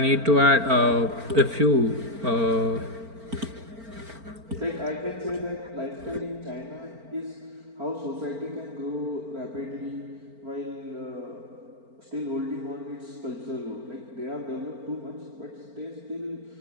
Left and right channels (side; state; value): left; late; 4.4 ms